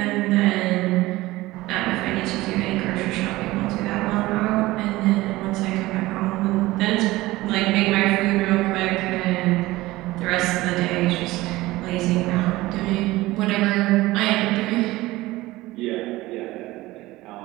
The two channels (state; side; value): quieter; left; 18.6 dB